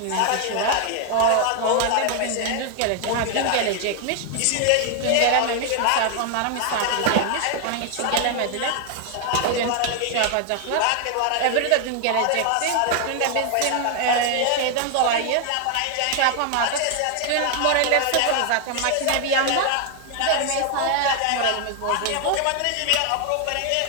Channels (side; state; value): both; different; correlation 0.00